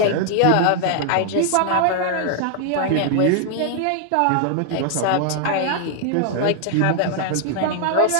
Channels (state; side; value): different; both; correlation 0.00